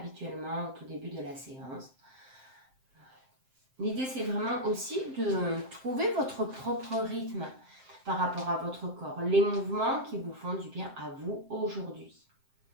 au tout début de la séance. L'idée, c'est vraiment aussi de trouver votre propre rythme par rapport à votre corps, les mouvements qui vous font du bien à vous aujourd'hui.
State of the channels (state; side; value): late; left; 7.6 ms